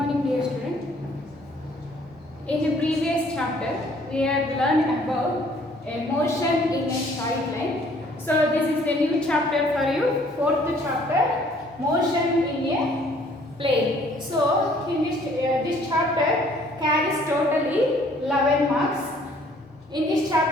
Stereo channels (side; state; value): both; normal; correlation 0.59